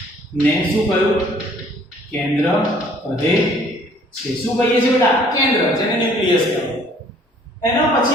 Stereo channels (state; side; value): normal; both; correlation 0.57